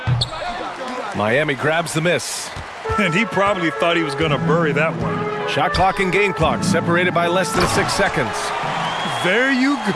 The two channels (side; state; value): both; identical; correlation 1.00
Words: Miami grabs the miss. And he probably thought he was going to bury that one. Shot clock and game clock separated by less than 6 seconds. There you